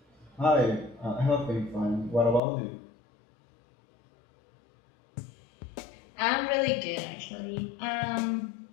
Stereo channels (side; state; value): right; drops out; at 2.4 s